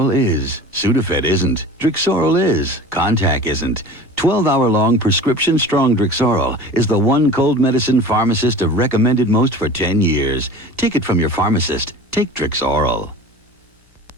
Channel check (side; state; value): both; normal; correlation 0.38